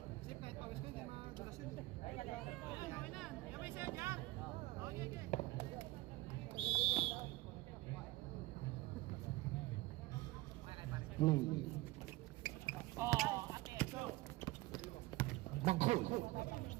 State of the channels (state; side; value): quieter; left; 19.7 dB